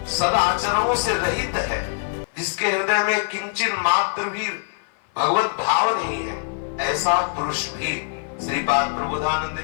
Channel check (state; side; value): silent; right; 55 dB below the other